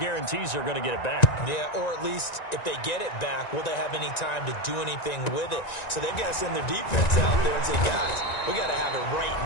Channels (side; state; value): right; late; 1.9 ms